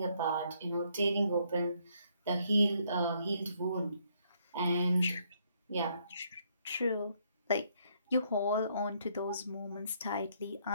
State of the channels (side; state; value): both; inverted; correlation -0.70